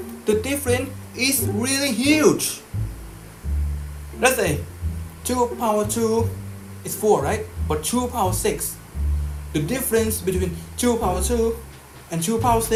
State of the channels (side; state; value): both; identical; correlation 1.00